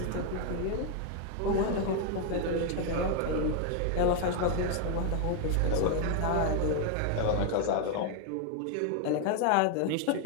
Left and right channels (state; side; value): different; both; correlation 0.00